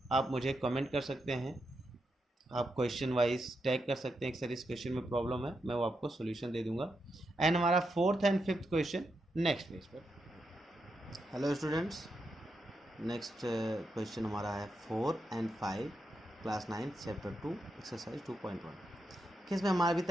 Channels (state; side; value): normal; both; correlation 0.84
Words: आप मुझे कमेंट कर सकते हैं, आप क्वेश्चन वाइज टैग कर सकते हैं कि सर इस क्वेश्चन में प्रॉब्लम है, मैं वो आपको सॉल्यूशन दे दूंगा। एंड हमारा fourth and fifth question next page पर। हेलो स्टूडेंट्स, नेक्स्ट क्वेश्चन हमारा है 4 and 5 क्लास 9 चैप्टर 2 एक्सरसाइज 2.1। इसमें हमारा अभी